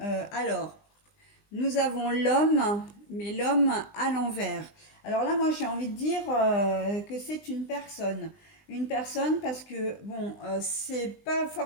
alors, nous avons l'homme, mais l'homme à l'envers. Alors là, moi, j'ai envie de dire que c'est une personne. Une personne parce que, bon, c'est pas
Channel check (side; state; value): right; late; 20 ms